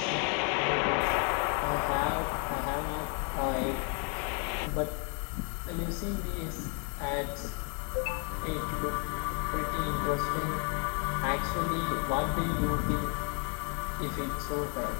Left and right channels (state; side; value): quieter; right; 38.3 dB